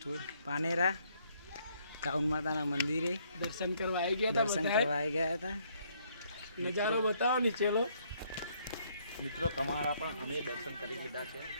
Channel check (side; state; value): both; inverted; correlation -0.68